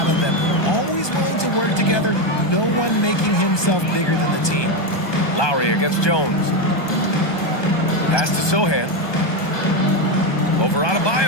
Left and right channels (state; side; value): late; right; 1.2 ms